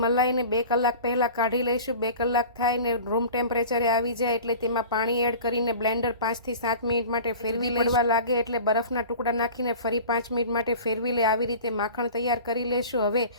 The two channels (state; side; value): inverted; both; correlation -0.39